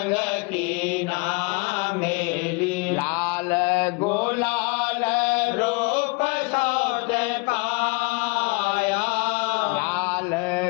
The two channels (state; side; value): quieter; right; 29.5 dB